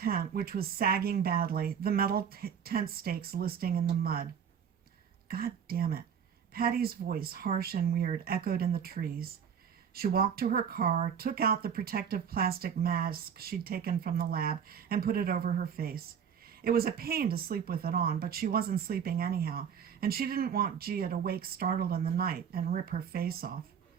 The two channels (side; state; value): left; quieter; 7.6 dB